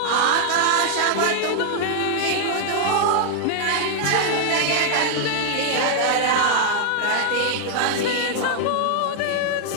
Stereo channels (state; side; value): different; both; correlation 0.00